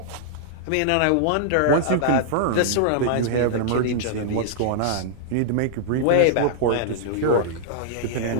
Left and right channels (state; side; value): different; both; correlation -0.01